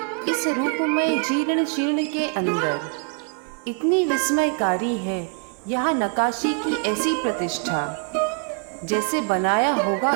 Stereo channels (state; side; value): quieter; left; 36.9 dB